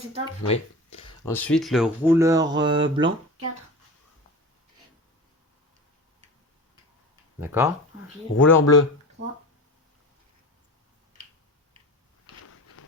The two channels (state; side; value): normal; both; correlation 0.32